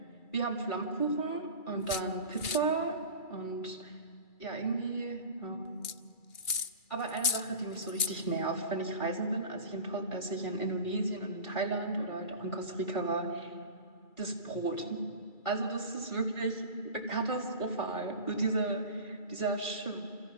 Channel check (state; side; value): late; right; 2.3 ms